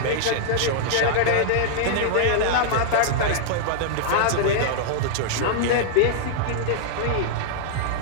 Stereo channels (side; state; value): both; different; correlation -0.01